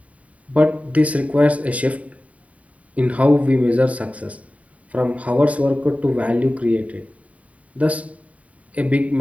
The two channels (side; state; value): left; late; 0.068 ms